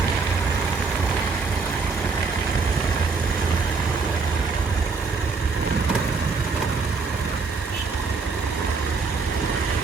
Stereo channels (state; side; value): quieter; left; 4.6 dB